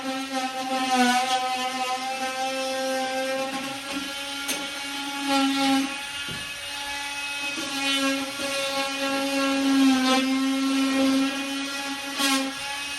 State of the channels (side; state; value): both; identical; correlation 1.00